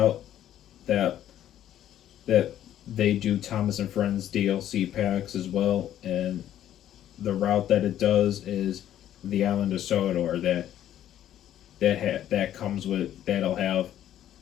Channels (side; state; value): right; quieter; 11.6 dB